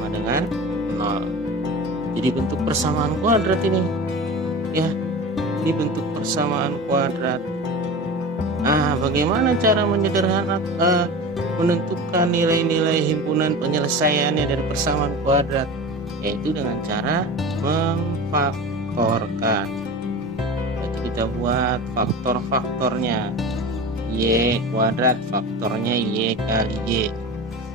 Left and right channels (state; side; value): normal; both; correlation 0.32